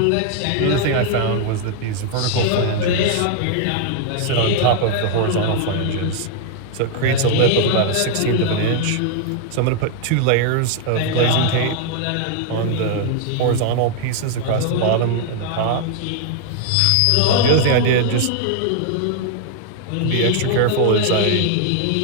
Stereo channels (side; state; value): both; different; correlation 0.00